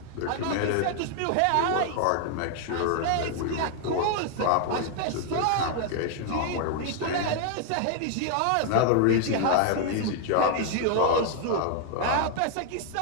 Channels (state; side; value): different; both; correlation 0.00